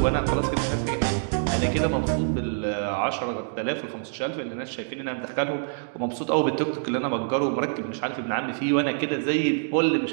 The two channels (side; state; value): left; silent; digital silence